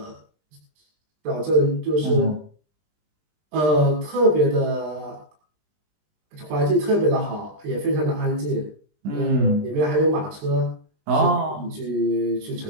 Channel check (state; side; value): late; left; 20 ms